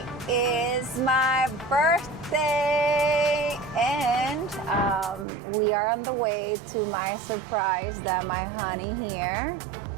is my birthday, and we are on the way to my surprise that my honey here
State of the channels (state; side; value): drops out; left; at 5.2 s